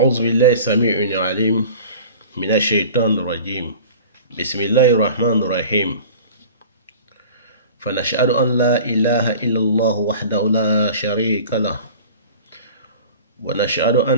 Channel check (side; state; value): both; inverted; correlation -0.41